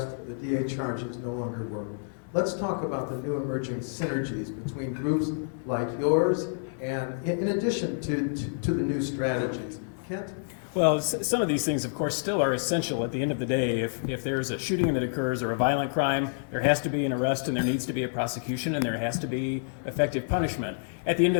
the DA charges no longer work. Let's talk about the new emerging synergies between groups like yours and in addition to the new strategies. Kent? Well, some of these things, of course, still are essential at the end of the day. If there's a shooting that occurs or a violent crime, there has to be an arrest and there needs to be a prosecution and there has to be effective punishment. At the end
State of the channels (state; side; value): silent; right; digital silence